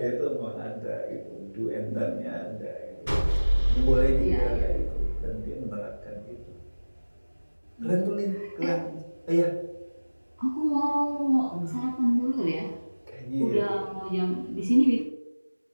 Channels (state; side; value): inverted; both; correlation -1.00